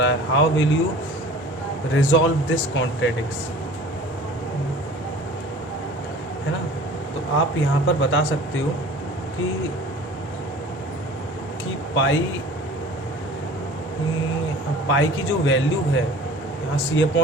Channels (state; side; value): normal; both; correlation 0.44